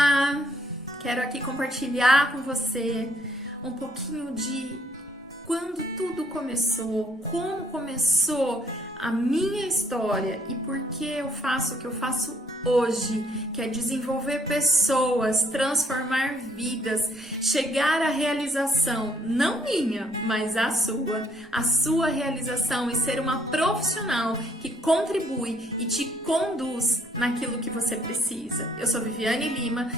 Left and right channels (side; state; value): both; normal; correlation 0.67